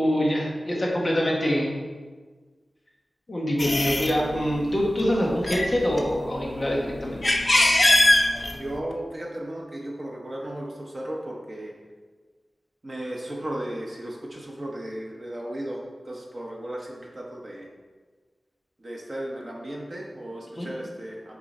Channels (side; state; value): both; normal; correlation 0.96